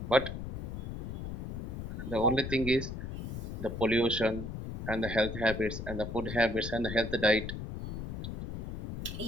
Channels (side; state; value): left; noise; rumble, 6 dB below the sound